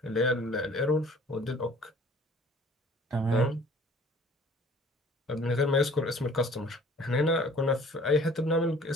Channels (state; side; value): normal; both; correlation 0.52